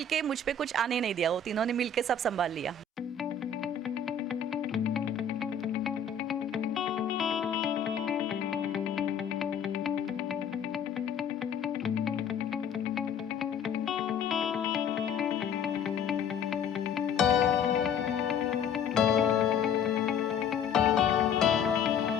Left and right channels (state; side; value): quieter; right; 5.6 dB